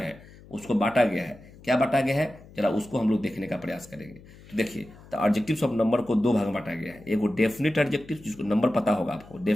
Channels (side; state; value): left; noise; hum, 21 dB below the sound